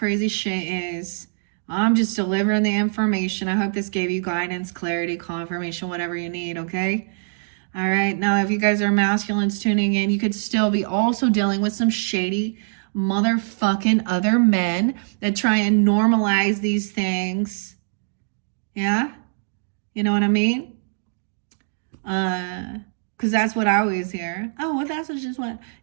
shit is. I'm just delivering the information. I hope this gave you guidance, clarity, confirmation, whatever you need, okay? All right, now if you guys are masculines tuning in, you could still be also dealing with some shady motherfucking other men that try and normalize these things. Yeah? You know what I mean? Because that's what I always hear. Oh, well, that's just what.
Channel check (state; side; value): silent; left; digital silence